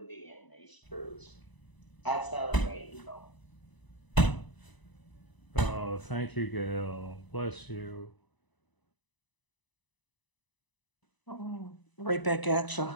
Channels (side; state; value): right; late; 1.0 ms